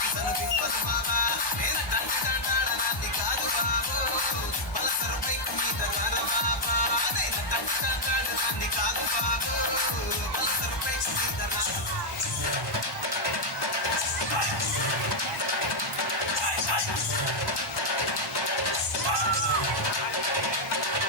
తను పిప్పదు బాబా నేనటంటి దండాడదాన్ని కాదు బాబు పలసరు పైకు మీద రార బాబా నేనటంటి దండాడదాన్ని కాదు బాబు పలసరు పైకు మీద రార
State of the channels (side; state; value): right; late; 1.1 ms